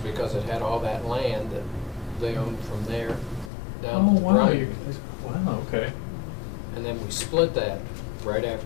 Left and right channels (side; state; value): right; drops out; at 3.5 s